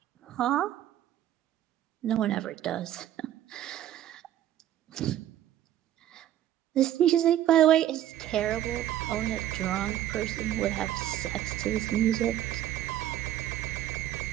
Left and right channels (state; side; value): quieter; left; 12.1 dB